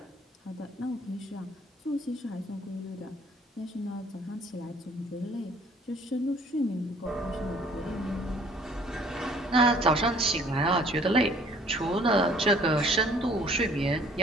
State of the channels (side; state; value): both; normal; correlation 0.57